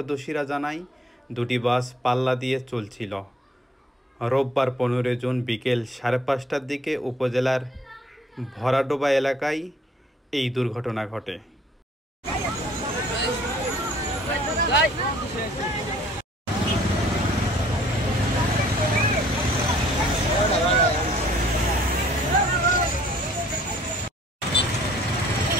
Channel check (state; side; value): normal; both; correlation 0.58